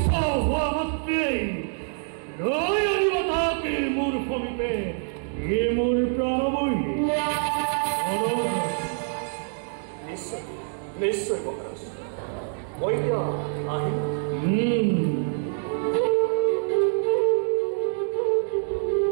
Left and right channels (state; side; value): silent; left; digital silence